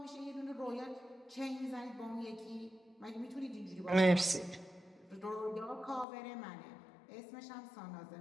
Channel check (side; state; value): right; drops out; at 6.1 s